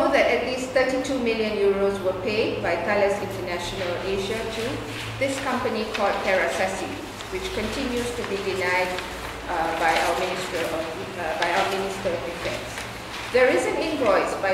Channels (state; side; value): identical; both; correlation 1.00